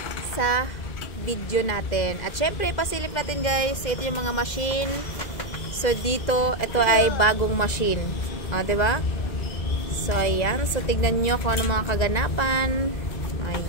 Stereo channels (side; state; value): right; late; 2.1 ms